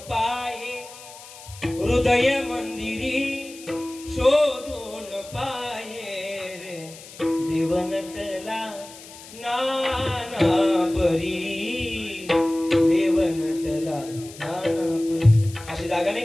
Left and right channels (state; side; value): noise; left; hiss, 17 dB below the sound